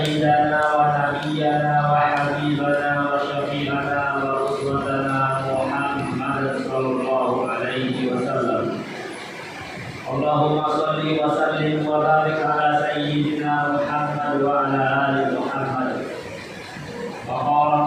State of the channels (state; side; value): identical; both; correlation 1.00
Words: wa nabiyyana wa habibana wa syafi'ana wa uswatana Muhammadan sallallahu alaihi wasallam. Allahumma shalli wa sallim wa barik ala sayyidina Muhammad wa ala ali Muhammad. Wa